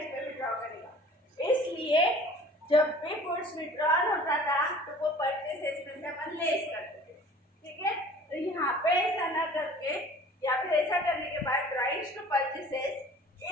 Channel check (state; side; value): normal; both; correlation 0.47